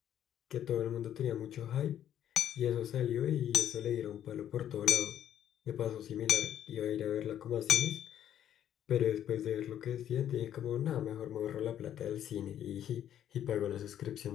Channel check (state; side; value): quieter; right; 10.6 dB